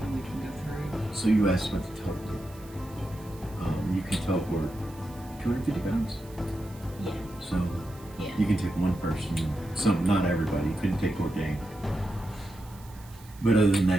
and we can go through. So you asked what to teleport. You can teleport 250 pounds. Yeah. So Yeah. you can take one person. Not everybody. You couldn't take Bourdain. But other than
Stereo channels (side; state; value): right; noise; hiss, 23 dB below the sound